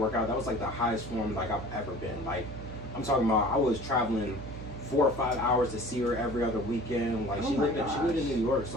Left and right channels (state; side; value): noise; right; hum, 10 dB below the sound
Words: out, that was like the highest form like I've ever been. Like I'm talking about, I was traveling 4 or 5 hours to see her every other weekend. Like she lived in New York,